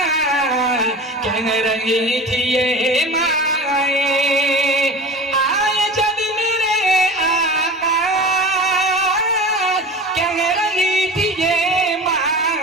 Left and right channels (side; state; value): both; normal; correlation 0.34